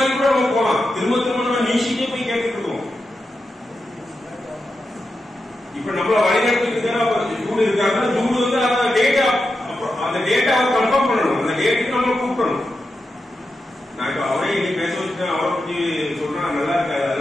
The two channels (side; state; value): both; normal; correlation 0.89